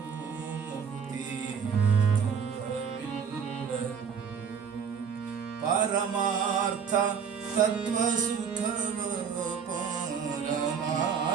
ಪರಮಾರ್ಥ ತತ್ವ ಸುಖವ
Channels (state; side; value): quieter; left; 6.8 dB